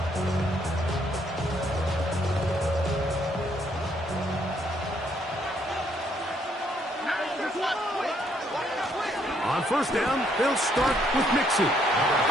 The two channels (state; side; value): normal; both; correlation 0.70